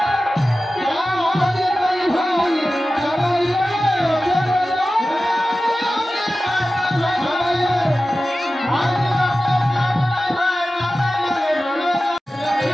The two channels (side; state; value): both; normal; correlation 0.95